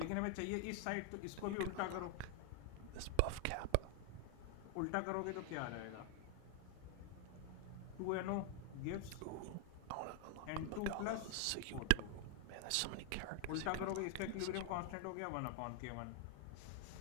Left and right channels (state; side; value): different; both; correlation 0.00